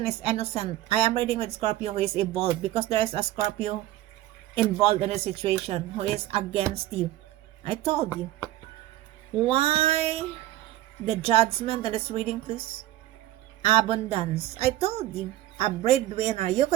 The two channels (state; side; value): quieter; left; 15.2 dB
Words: is innocent, I am reading with Scorpio who is evolved because there is a Scorpio involved in a situation who is against you. I told you. Why the judgment in this reading, please? Abundance. I told you. A breadwinner. You